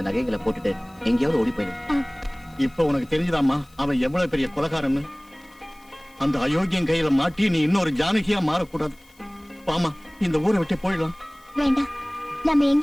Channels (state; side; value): noise; left; hiss, 30 dB below the sound